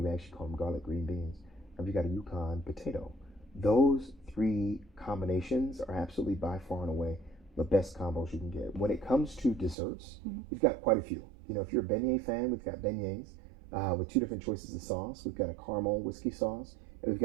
we actually call them garlic green beans. And we got a Yukon potato. Those 3 combinations are absolutely by far and away the best combos you can get. When it comes to desserts, we've got quite a few. You know, if you're a beignet fan, we've got beignets with 2 different choices of sauce. We've got a caramel whiskey sauce, and we've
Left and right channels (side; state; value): left; drops out; at 9.8 s